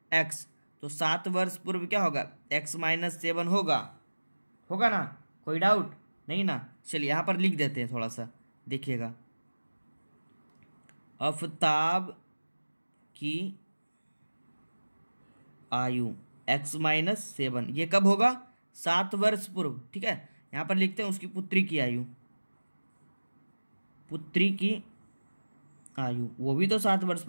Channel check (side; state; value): both; inverted; correlation -1.00